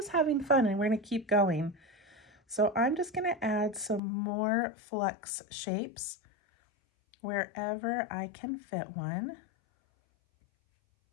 having fun and we're going to keep going. So I'm just going to add some more flux shapes wherever I can fit one.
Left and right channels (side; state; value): right; drops out; at 4.0 s